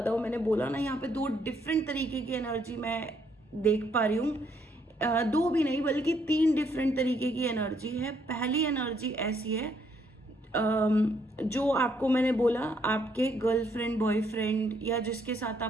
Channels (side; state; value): both; normal; correlation 0.71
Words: हो। मैंने बोला ना यहाँ पे 2 डिफरेंट तरीके की एनर्जी मैं देख पा रही हूँ। 2 भी नहीं बल्कि 3 डिफरेंट तरीके की एनर्जी है। पहली एनर्जी ऐसी है जो आपको मैंने बोला, आपके गर्लफ्रेंड बॉयफ्रेंड या जिसके साथ